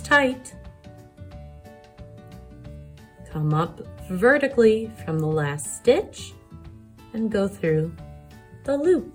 Come up vertically from the last stitch and go through the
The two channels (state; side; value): identical; both; correlation 1.00